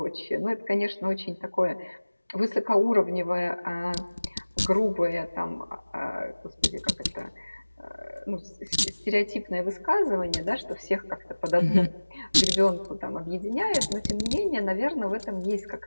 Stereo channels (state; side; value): inverted; both; correlation -1.00